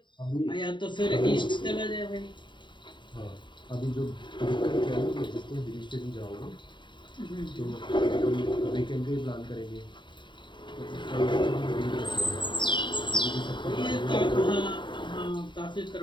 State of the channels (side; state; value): right; late; 0.23 ms